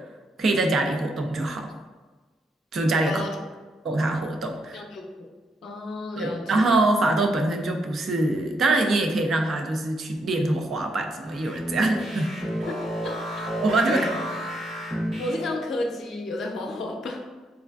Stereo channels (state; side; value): normal; both; correlation 0.77